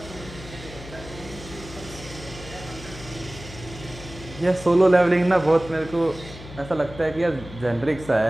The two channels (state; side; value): noise; left; hum, 15 dB below the sound